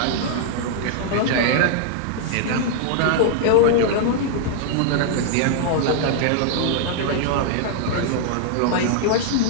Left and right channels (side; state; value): both; different; correlation -0.01